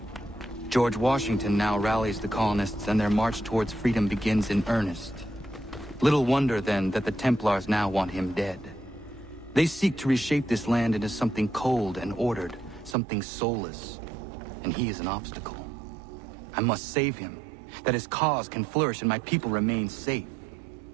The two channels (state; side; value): drops out; left; at 13.0 s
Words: George Washington now rallies the colonists, and their march towards freedom begins in earnest. Little wonder, then, that the Templars now want him dead. They seek to reshape this land into something cold and ordered, something soulless. And he is an obstacle. I must save him, that his cause can flourish and my people remain safe.